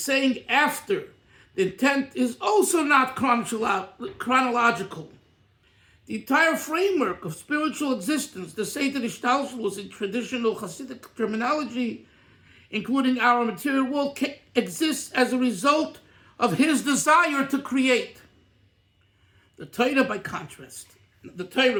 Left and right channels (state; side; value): identical; both; correlation 1.00